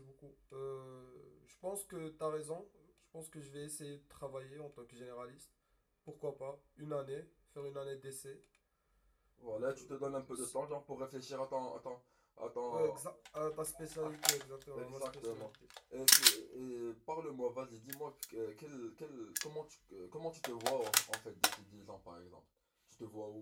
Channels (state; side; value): identical; both; correlation 1.00